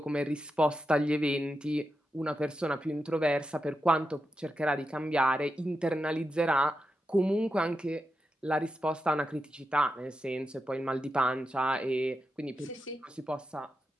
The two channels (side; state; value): both; normal; correlation 0.88